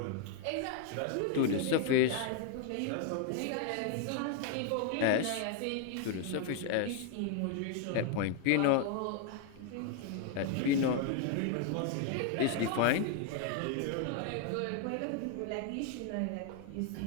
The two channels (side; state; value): both; different; correlation 0.01